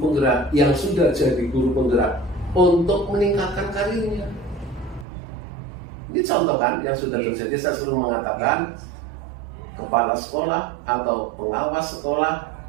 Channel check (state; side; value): drops out; left; at 5.1 s